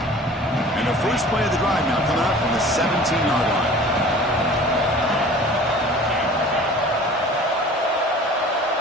And the first play of the drive now coming up from the 17-yard line.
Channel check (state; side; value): normal; both; correlation 0.44